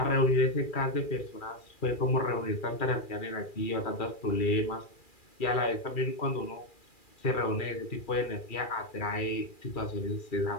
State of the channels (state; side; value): late; right; 2.4 ms